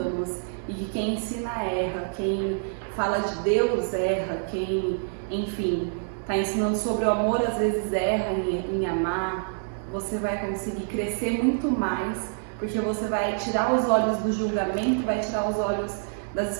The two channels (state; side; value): silent; left; 60 dB below the other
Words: e que quem ensina erra, quem fala de Deus erra, quem, enfim, está ensinando sobre o amor às vezes erra em amar, você vai conseguir crescer muito mais, porque você vai tirar os olhos do julgamento, vai tirar os olhos das